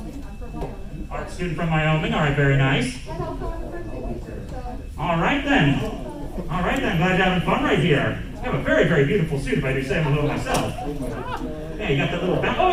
I'm from Wyoming. Art student from Wyoming. All right, very nice. And also I'm a fursuit teacher, so. All right then. All right then. Glad you're having fun right here. You have a very, very beautiful suit, if I do say so myself. Yeah, you got that little belt. Oh,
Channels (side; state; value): both; identical; correlation 1.00